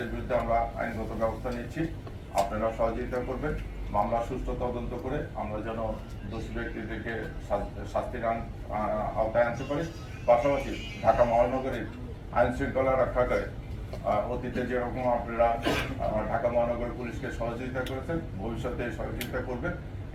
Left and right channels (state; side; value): identical; both; correlation 1.00